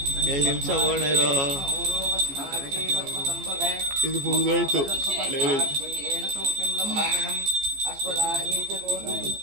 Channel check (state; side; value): late; left; 14 ms